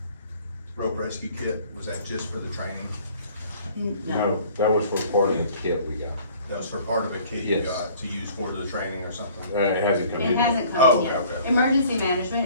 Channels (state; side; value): inverted; both; correlation -0.53